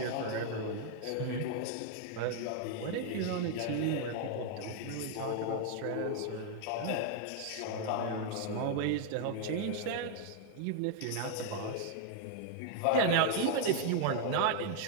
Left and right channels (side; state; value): both; different; correlation 0.00